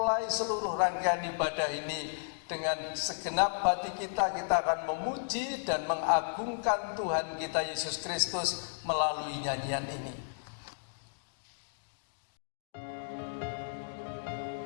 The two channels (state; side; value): silent; right; digital silence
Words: seluruh rangkaian ibadah ini dengan segenap hati kita. Kita akan memuji dan mengagungkan Tuhan kita Yesus Kristus melalui nyanyian ini.